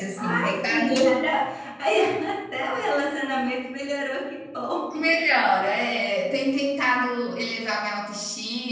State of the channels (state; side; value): identical; both; correlation 1.00